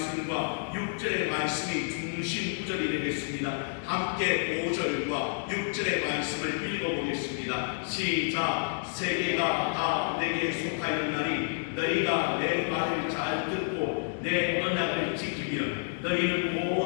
6절의 말씀이 중심 구절이 되겠습니다. 함께 5절과 6절의 말씀을 읽어보겠습니다. 시작. 세계가 다 내게 속하였나니 너희가 내 말을 잘 듣고 내 언약을 지키면 너희는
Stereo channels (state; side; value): silent; right; 58 dB below the other